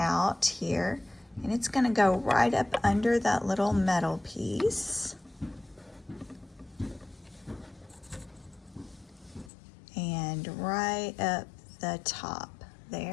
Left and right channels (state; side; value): drops out; right; at 9.5 s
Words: here, and it's gonna go right up under that little metal piece. And right up the top